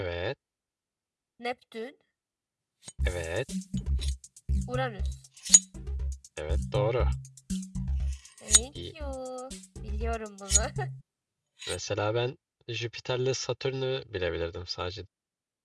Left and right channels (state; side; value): identical; both; correlation 1.00